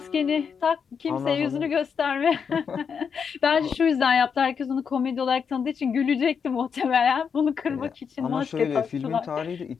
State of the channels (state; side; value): quieter; right; 6.5 dB